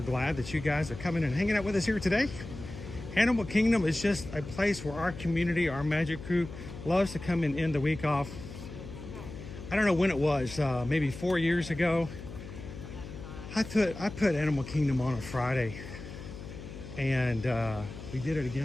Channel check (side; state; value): left; noise; hum, 12 dB below the sound